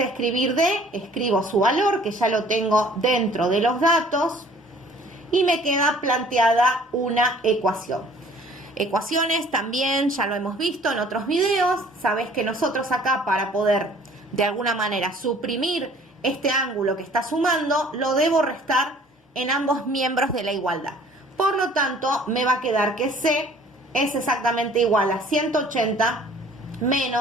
escribir D, escribo su valor, que ya lo tengo dentro de los datos, y me queda planteada una ecuación. Ecuaciones también ya lo hemos visto en otros videos. Sabés que nosotros acá, para poder de alguna manera suprimir este ángulo que está sumando, lo debo restar en ambos miembros de la igualdad. Por lo tanto, me va a quedar que C es exactamente igual a 180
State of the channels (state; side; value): normal; both; correlation 0.53